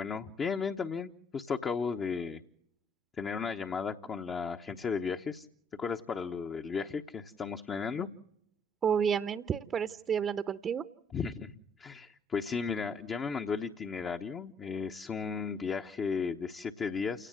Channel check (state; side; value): normal; both; correlation 0.67